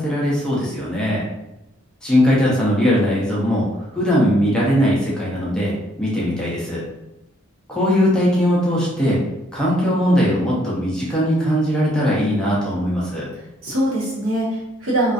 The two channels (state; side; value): normal; both; correlation 0.69